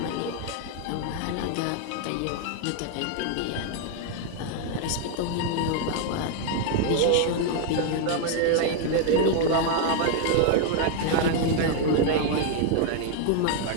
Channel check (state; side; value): different; both; correlation 0.00